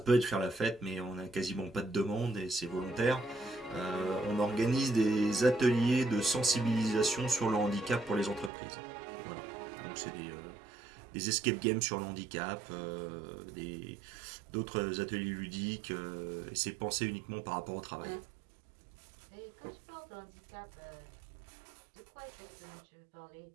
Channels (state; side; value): drops out; left; at 8.5 s